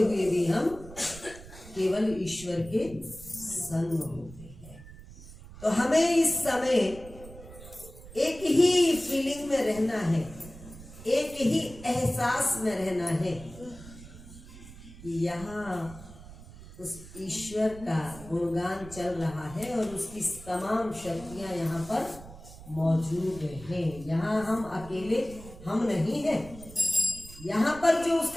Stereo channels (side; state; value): right; noise; rumble, 16 dB below the sound